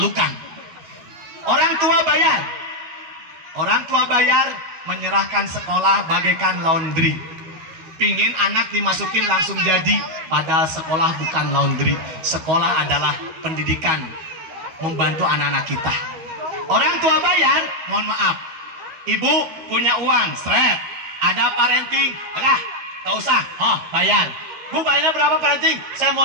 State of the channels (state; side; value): late; left; 13 ms